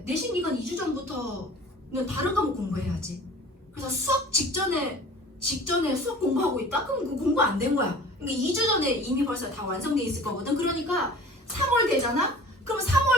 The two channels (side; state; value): both; normal; correlation 0.44